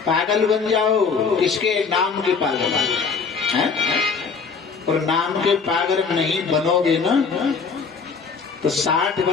पागल बन जाओ। किसके नाम के पागल हैं? और नाम के पागल नहीं बनोगे ना तो 60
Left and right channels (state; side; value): quieter; right; 5.3 dB